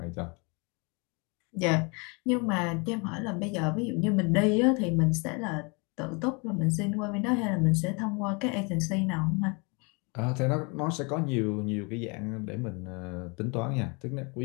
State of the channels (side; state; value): right; quieter; 31.5 dB